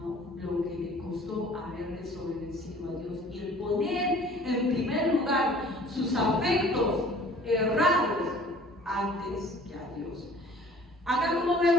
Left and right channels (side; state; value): both; normal; correlation 0.51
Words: lo que le costó haber desobedecido a Dios y el poner en primer lugar sus afectos errados antes que a Dios. Acá como